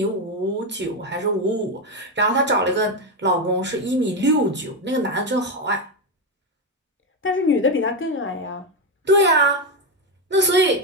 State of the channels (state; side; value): normal; both; correlation 0.09